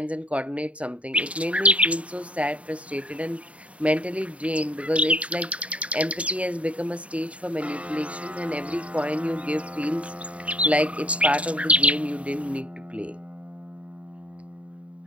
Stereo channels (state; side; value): late; left; 0.065 ms